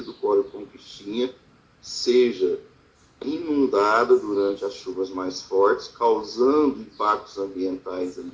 do córrego Conquistinha seja inundada durante as chuvas mais fortes, causando impactos ambientais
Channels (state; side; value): identical; both; correlation 1.00